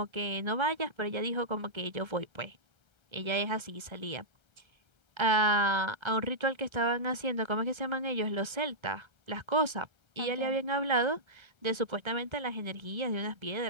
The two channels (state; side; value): late; left; 1.3 ms